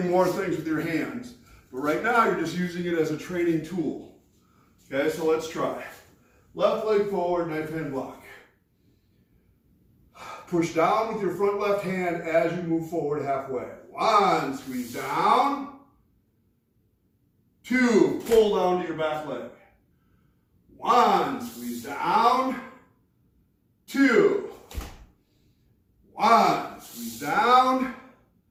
more things with your hands. But right now, you're just using it as a training tool. Okay, so let's try. Left leg forward, knife hand block. Push down with your front left hand as you move forward halfway. One, squeeze down. Two, pull down to your back leg. One, squeeze down. Two. One, squeeze down.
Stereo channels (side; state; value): both; identical; correlation 1.00